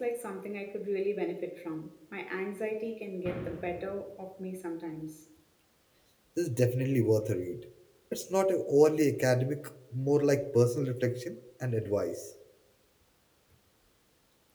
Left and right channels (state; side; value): identical; both; correlation 1.00